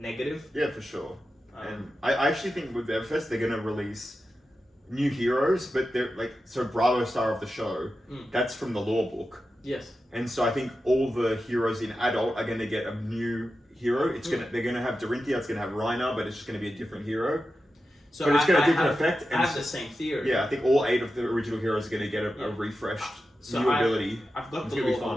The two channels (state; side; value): normal; both; correlation 0.91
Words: Yeah, for sure. And I actually think with Everfest they're going to release new heroes, but they're like, so Bravo Star of the Show, that's from the lore book. Yes. And so I think all the heroes in Adult are going to get a new hero. They're going to have Dorinthia, it's going to have Reiner, but it's just going to be a different hero. So but it's got a different effect. I have the same theory. Yeah, I think all 8 of the original heroes are going to get a refreshed new ability. I've got the lore